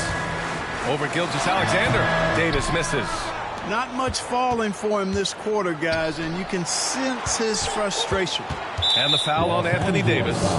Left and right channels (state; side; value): identical; both; correlation 1.00